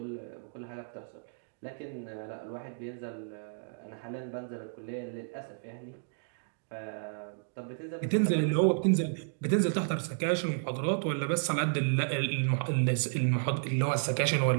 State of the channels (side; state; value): left; silent; digital silence